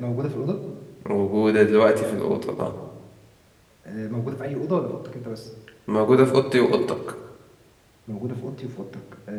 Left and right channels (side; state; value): both; identical; correlation 1.00